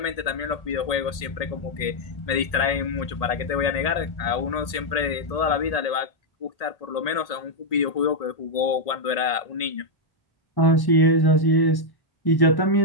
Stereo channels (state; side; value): late; right; 1.8 ms